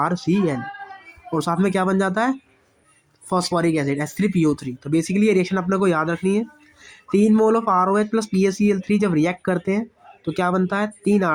और साथ में क्या बन जाता है, फॉस्फोरिक एसिड H3PO3। तो बेसिकली ये रिएक्शन अपने को याद रखनी है। 3 mole of ROH plus PaCl3 जब रिएक्ट करते हैं तो क्या बनता है, 3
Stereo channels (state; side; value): identical; both; correlation 1.00